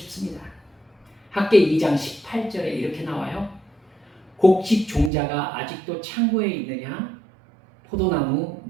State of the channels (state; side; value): drops out; left; at 5.1 s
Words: 학계 2장 18절에 이렇게 나와요. 곡식 종자가 아직도 창고에 있느냐? 포도나무,